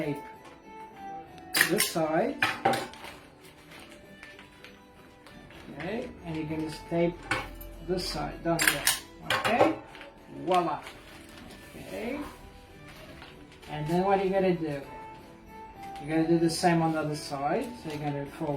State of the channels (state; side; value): identical; both; correlation 1.00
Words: this side, okay, and you're gonna staple this side down there. Okay, voila. Okay, and then what are you gonna do? You're gonna do the same on the other side. So you're gonna